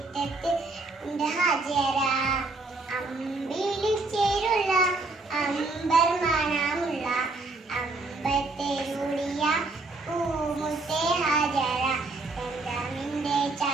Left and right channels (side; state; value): left; quieter; 3.4 dB